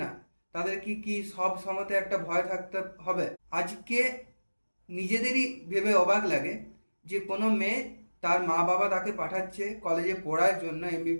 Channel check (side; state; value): both; inverted; correlation -1.00